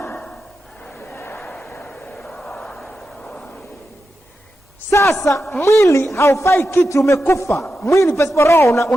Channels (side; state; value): both; normal; correlation 0.89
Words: sasa mwili haufai kitu, umekufa. Mwili pasipo roho